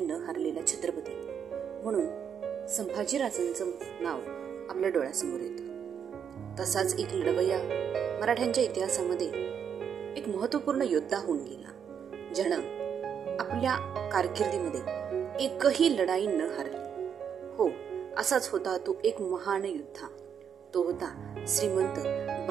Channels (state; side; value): quieter; left; 7.7 dB